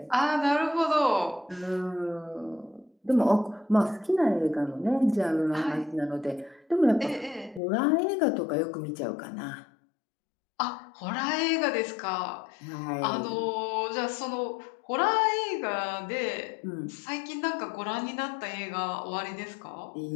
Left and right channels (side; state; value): right; drops out; at 7.6 s